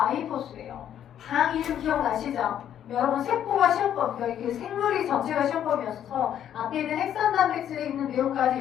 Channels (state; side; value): quieter; right; 10.2 dB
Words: 당 이름 기억나시죠? 여러분 세포가 시험범, 그 생물이 전체가 시험범이었어서 앞에 있는 핵산 단백질에 있는